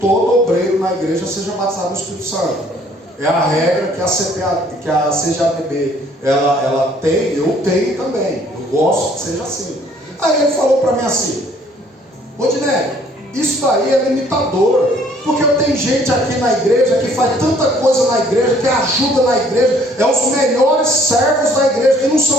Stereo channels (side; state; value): both; normal; correlation 0.60